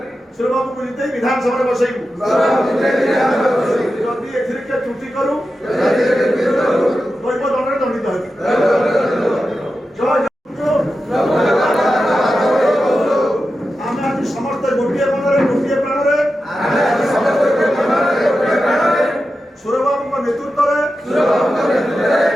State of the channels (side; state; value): both; normal; correlation 0.91